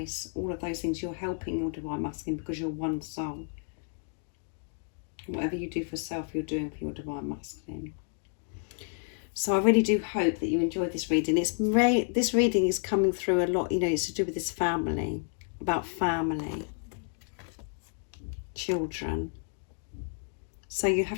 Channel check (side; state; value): right; silent; 57 dB below the other